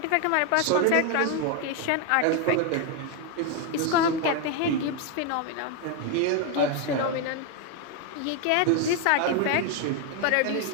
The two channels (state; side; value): different; both; correlation 0.01